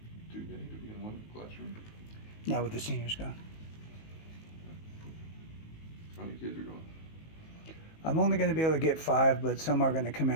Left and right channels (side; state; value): right; late; 19 ms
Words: too many to be in one classroom? Now with the seniors gone. How many kids are going? I'm only going to be able to get 5, but some are going to come